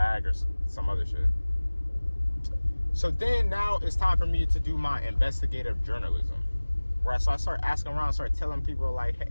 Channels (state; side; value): inverted; both; correlation -1.00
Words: or some other shit. So then now it's time for me to do my investigative journalism, right? So I start asking around, start telling people like,